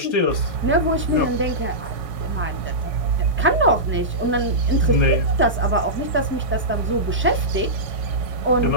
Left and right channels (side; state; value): both; normal; correlation -0.16